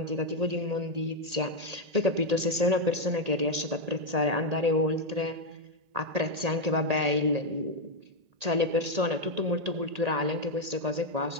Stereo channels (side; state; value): left; late; 1.8 ms